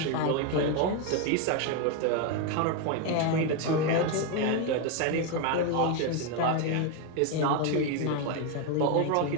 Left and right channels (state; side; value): different; both; correlation 0.02